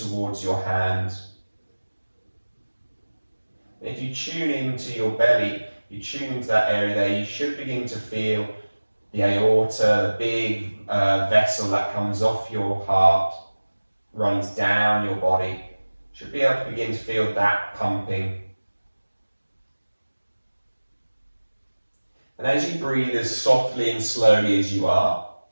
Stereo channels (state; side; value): inverted; both; correlation -1.00